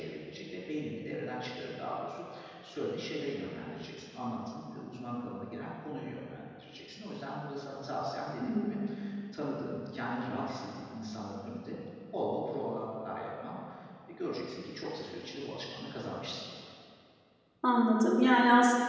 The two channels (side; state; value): both; identical; correlation 1.00